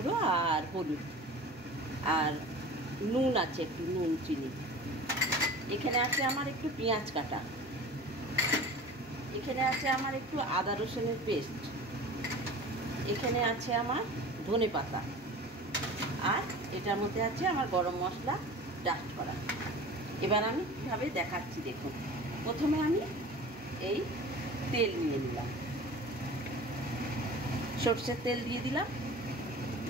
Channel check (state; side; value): normal; both; correlation 0.38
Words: আর হলুদ, আর নুন আছে একটু, নুন চিনি। এখানে আছে আমার একটু পেঁয়াজ কাটা, এখানে আছে আমার একটু আদা রসুনের পেস্ট, এখানে আছে আমার ধনে পাতা, আর এটার মধ্যে আছে আমার গরম মশলা ডাস্ট করা। এবার আমি কীভাবে দেখাচ্ছি দেখুন। প্রথমে আমি এই তেল নিয়ে নিলাম, সরষের তেল দিয়ে দিলাম।